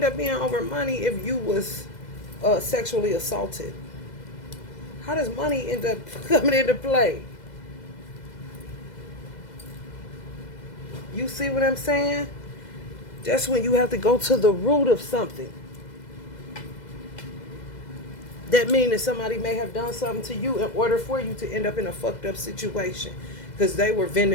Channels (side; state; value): right; late; 2.0 ms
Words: up being over money if you was sexually assaulted? How does money end up coming into play? You see what I'm saying? That's when you have to go to the root of something. That means that somebody may have done something to you in order for you to end up in a fucked up situation. Because they were